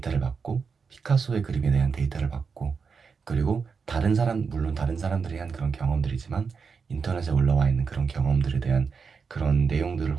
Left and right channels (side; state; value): left; quieter; 5.5 dB